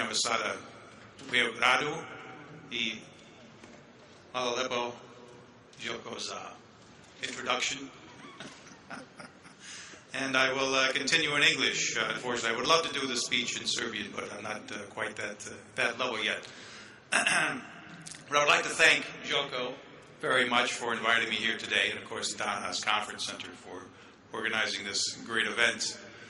Ambasade u Beogradu i hvala lepo Željko za introduction. And I will continue in English. Unfortunately, I would love to do the speech in Serbian, but I'm not quite that level yet. But I would like to thank Željko very much for inviting me here today, and of course the Daglas Conference Center for organizing this great event.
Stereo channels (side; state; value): both; identical; correlation 1.00